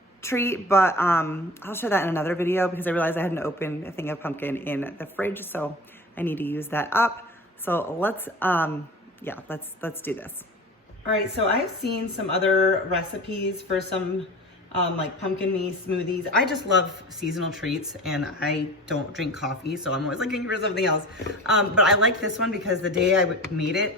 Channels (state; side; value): normal; both; correlation 0.36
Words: treat, but I'll share that in another video because I realized I hadn't opened a thing of pumpkin in the fridge, so I need to use that up. So let's do this. All right, so I've seen some other recipes for some like pumpkin smoothies. I just love seasonal treats and I don't drink coffee, so I'm always looking for something else. But I like this one because the day I made it,